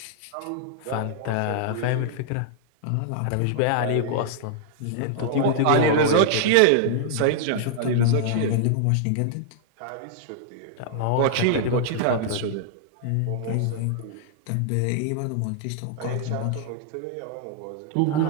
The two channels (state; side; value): different; both; correlation -0.01